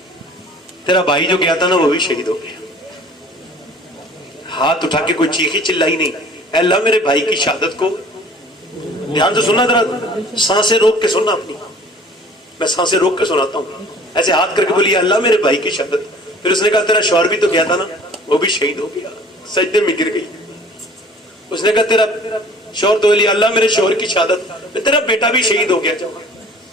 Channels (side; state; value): both; normal; correlation 0.49